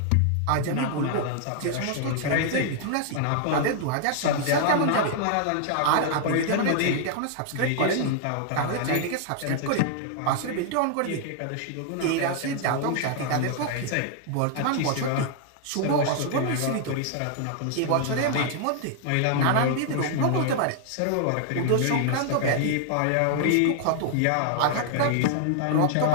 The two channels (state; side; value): different; both; correlation 0.00